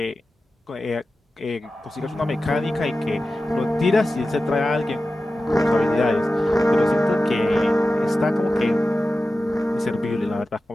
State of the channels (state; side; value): normal; both; correlation 0.94